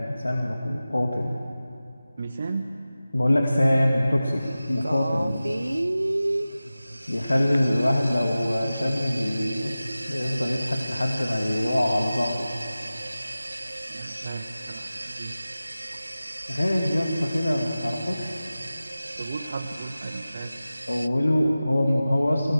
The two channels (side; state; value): both; inverted; correlation -0.96